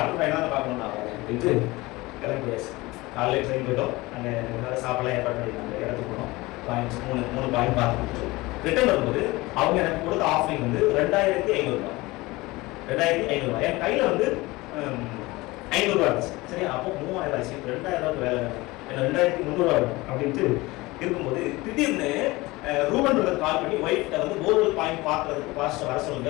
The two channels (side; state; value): right; quieter; 21.3 dB